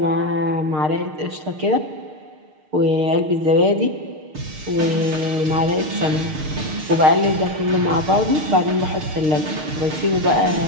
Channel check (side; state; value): left; late; 6.5 ms